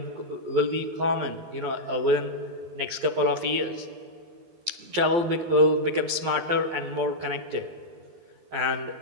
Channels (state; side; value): late; left; 12 ms